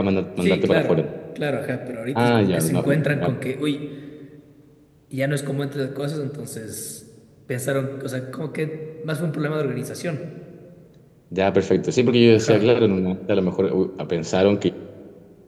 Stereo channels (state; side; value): identical; both; correlation 1.00